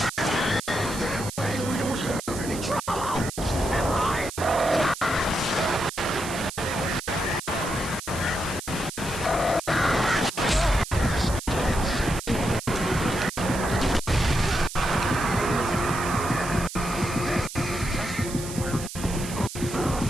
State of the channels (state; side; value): noise; right; hiss, 10 dB below the sound